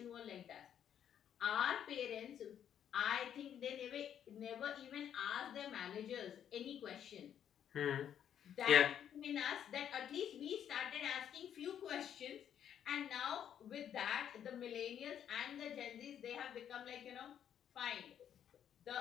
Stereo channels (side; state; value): right; quieter; 9.5 dB